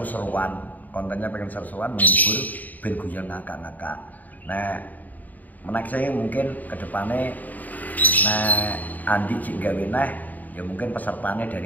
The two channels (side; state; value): right; late; 0.081 ms